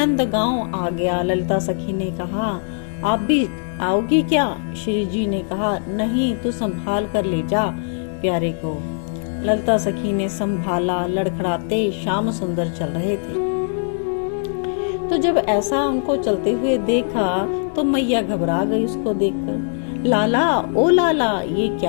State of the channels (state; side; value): silent; right; digital silence